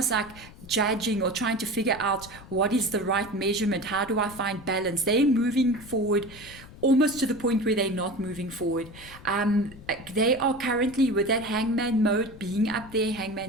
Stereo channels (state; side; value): noise; left; rumble, 18 dB below the sound